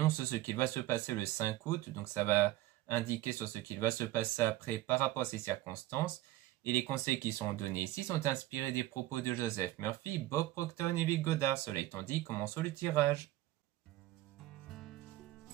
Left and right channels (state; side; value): quieter; left; 16.1 dB